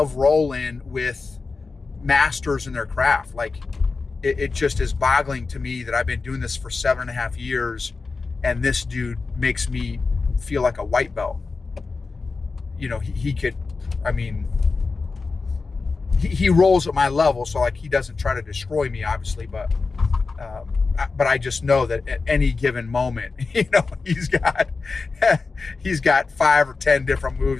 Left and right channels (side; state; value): right; quieter; 4.2 dB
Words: rolling with masters in their craft. Like, it just is boggling to me that I've been doing this for 7.5 years, and this dude makes me feel like a white belt. He could, I mean, he rolls at my level, so like he doesn't try to destroy me, obviously, but I just know that at any given moment, he's got 5 or 10 different